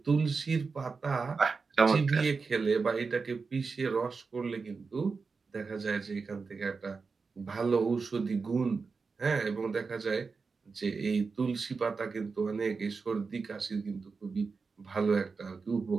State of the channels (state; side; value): quieter; left; 4.7 dB